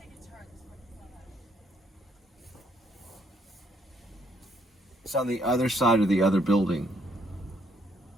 It's on the other side of the other building.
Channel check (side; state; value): both; normal; correlation 0.69